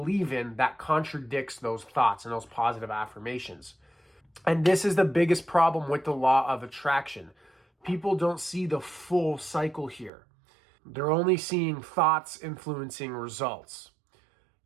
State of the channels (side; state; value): left; drops out; at 10.1 s